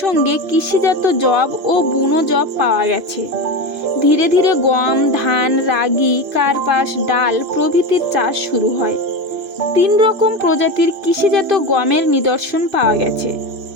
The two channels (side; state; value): left; late; 3.0 ms